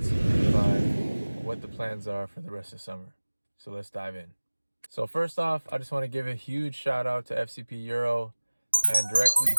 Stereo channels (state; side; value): inverted; both; correlation -1.00